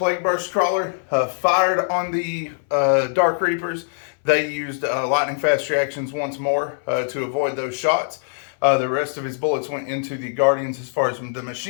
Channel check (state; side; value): silent; right; 61 dB below the other